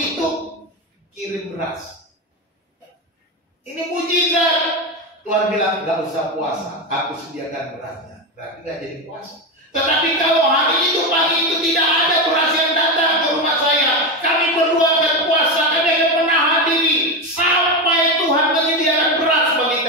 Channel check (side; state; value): both; normal; correlation 0.14